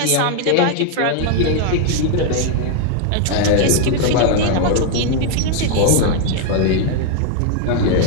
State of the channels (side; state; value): both; different; correlation 0.00